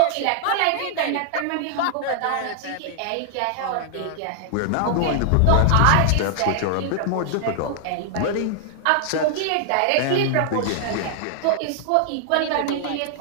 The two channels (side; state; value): both; different; correlation -0.01